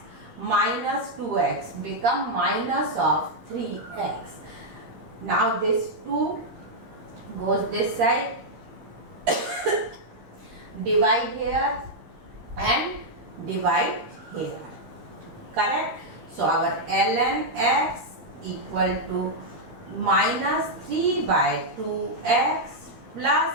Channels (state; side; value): late; left; 13 ms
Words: minus 2x become minus of 3x. Now this 2 goes this side, divide here and divide here. Correct? So our ln x equal to minus 3 by 2x